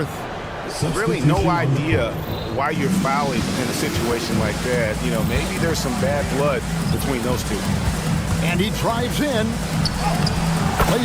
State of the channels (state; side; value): identical; both; correlation 1.00